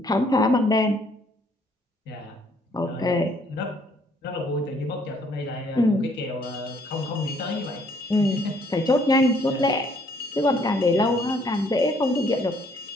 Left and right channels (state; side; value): normal; both; correlation 0.65